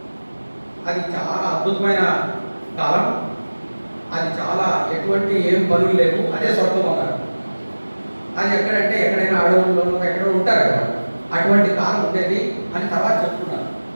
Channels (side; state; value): both; inverted; correlation -1.00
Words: అది చాలా అద్భుతమైన కాలం, అది చాలా ఎటువంటి ఏం పనులు లేవు, అదే స్వర్గం అన్నారు. అది ఎక్కడంటే ఎక్కడైనా అడవుల్లోనూ ఎక్కడో ఉంటారు కదా, అటువంటి కాలం ఉండేది అని తర్వాత చెప్పుకున్నారు.